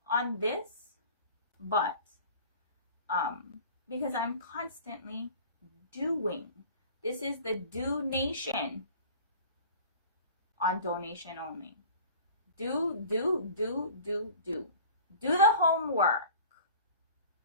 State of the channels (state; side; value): inverted; both; correlation -0.44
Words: on this, but because I'm constantly doing. This is the Do Nation on donation only. Do the homework.